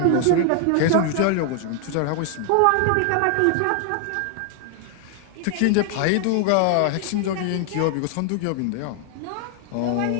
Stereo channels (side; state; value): both; different; correlation 0.00